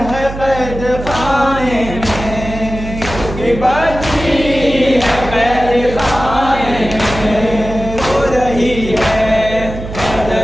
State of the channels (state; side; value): noise; right; hum, 9 dB below the sound